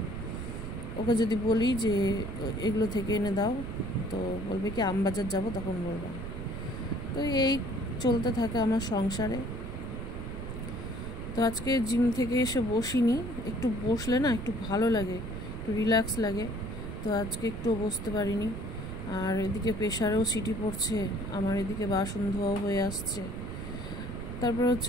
ওকে যদি বলি যে এগুলো থেকে এনে দাও, তো বলবে কি আমবাজার যাব, তখন বলবো। তো এই চলতে থাকে আমার সংসারে। তো আজকে জিম থেকে এসে বসিনি, একটু বসলে না একটু ভালো লাগে, একটু রিল্যাক্স লাগে। তো আজকে একটু বসতে পারিনি। আর এদিকে প্রেশারেও সিটি পড়ছে, আমার এদিকে বাসন ধোয়াও হয়ে আসছে। তারপর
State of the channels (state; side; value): noise; right; rumble, 7 dB below the sound